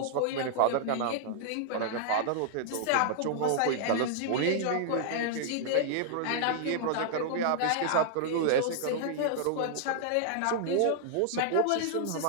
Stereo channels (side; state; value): both; different; correlation -0.01